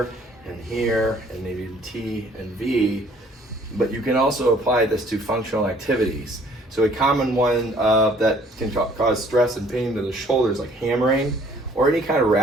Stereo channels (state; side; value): normal; both; correlation 0.58